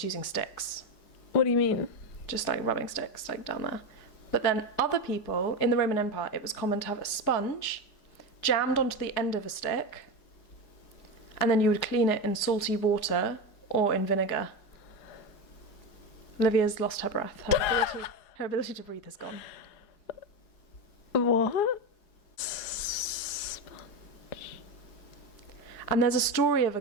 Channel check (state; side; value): late; right; 4.8 ms